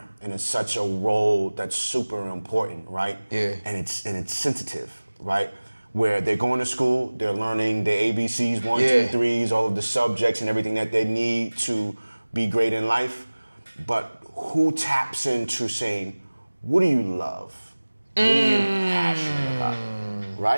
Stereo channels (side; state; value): both; inverted; correlation -1.00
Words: and it's such a role that's super important, right? Yeah. And it's sensitive, right? Where they're going to school, they're learning the ABCs, 1, 2, 3s, all of the subjects and everything that they need to be great in life. But who taps into saying, what do you love? What are you passionate about?